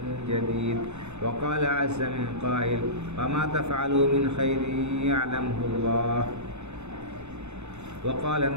جديد وقال عز من قائل وما تفعلوا من خير يعلمه الله وقال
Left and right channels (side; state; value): left; late; 0.82 ms